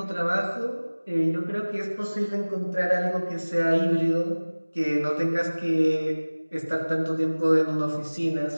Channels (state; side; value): inverted; both; correlation -1.00